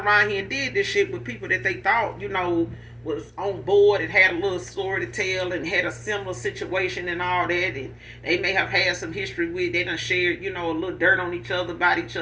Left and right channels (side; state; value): both; identical; correlation 1.00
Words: here and did this shit with people that they thought, was on board and had a little story to tell and had a similar situation and all that. And they may have had some history with, they done shared, a little dirt on each other, about each